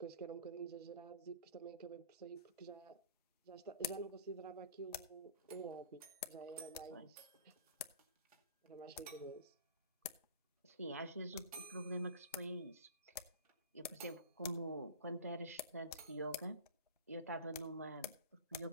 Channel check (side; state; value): both; inverted; correlation -0.40